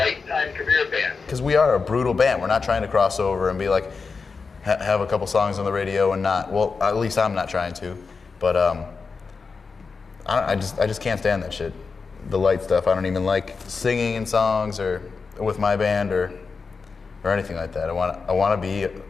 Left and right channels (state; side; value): quieter; right; 4.8 dB